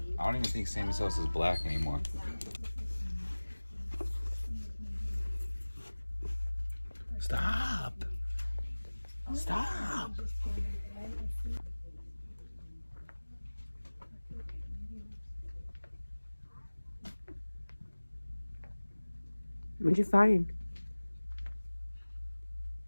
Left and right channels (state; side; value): inverted; both; correlation -1.00